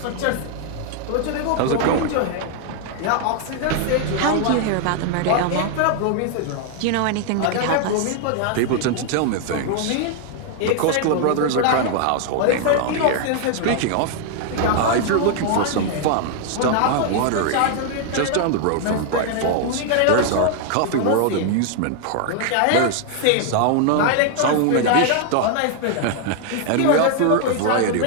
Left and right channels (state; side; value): different; both; correlation 0.00